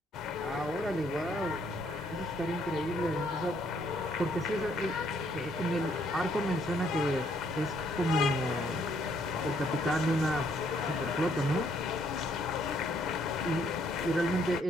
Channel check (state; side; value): normal; both; correlation 0.68